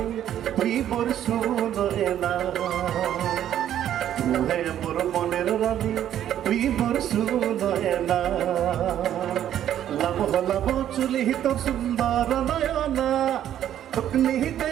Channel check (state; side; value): quieter; left; 11.0 dB